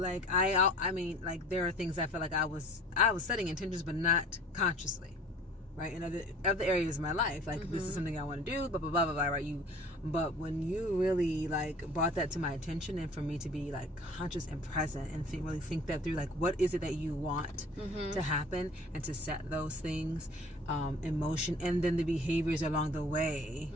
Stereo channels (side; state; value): both; normal; correlation 0.48